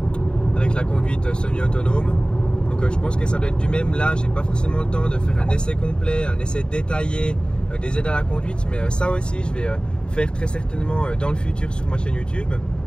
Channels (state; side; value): late; right; 0.051 ms